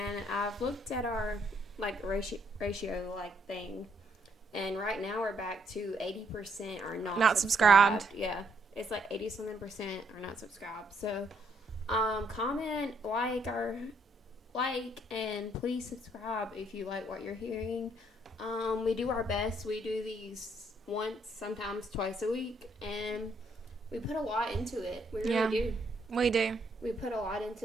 I've looked at our like ratio like thing, and right now we're back to 80% are not subscribed. Yeah. It's like 80-something% are not subscribed. So, comment, like, and please subscribe if you like what you're hearing. We do our best. We do these once, sometimes twice a week, and we put a lot into it. We really do. We do. We put a lot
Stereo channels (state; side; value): normal; both; correlation 0.70